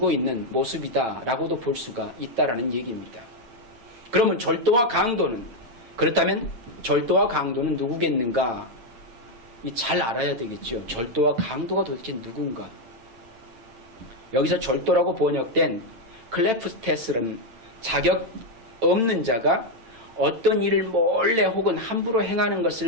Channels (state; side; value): late; left; 8.9 ms